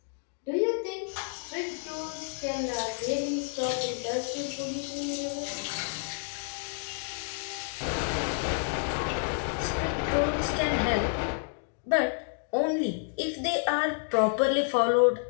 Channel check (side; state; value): right; silent; 57 dB below the other